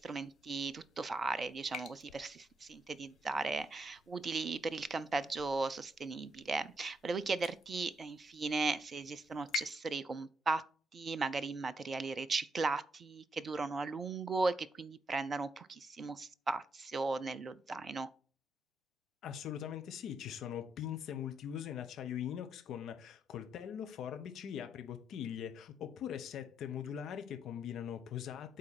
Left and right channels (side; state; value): both; normal; correlation 0.78